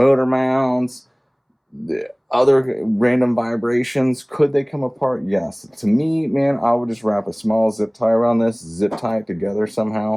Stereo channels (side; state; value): both; identical; correlation 1.00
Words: mounts, the other random vibrations. Could they come apart? Yes. To me, man, I would just wrap a small zip tie around this, zip tie it together